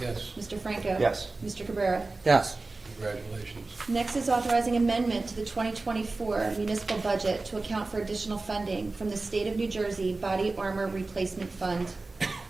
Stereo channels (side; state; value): left; quieter; 3.4 dB